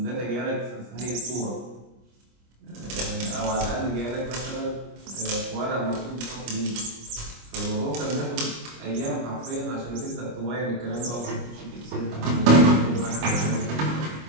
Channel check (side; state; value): left; late; 25 ms